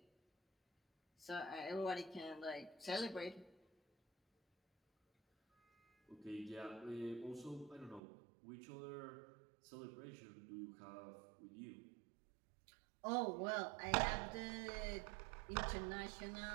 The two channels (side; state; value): left; drops out; at 8.0 s